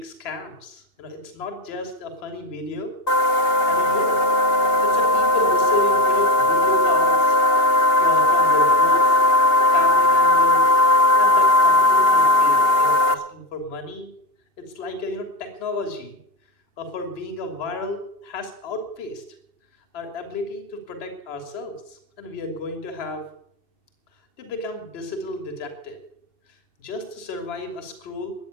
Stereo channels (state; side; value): late; right; 2.8 ms